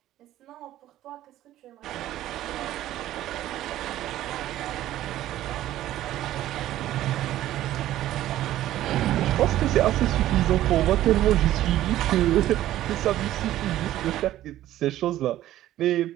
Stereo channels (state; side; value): quieter; left; 13.7 dB